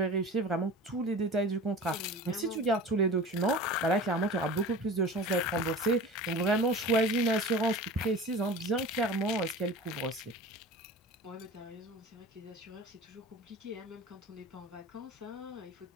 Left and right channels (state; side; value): normal; both; correlation 0.36